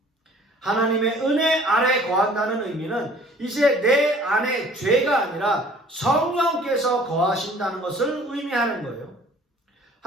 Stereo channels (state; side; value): normal; both; correlation 0.52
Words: 하나님의 은혜 아래 거한다는 의미는 이제 내 안에 죄가 아니라 성령께서 거하신다는 것을 의미하는 거예요.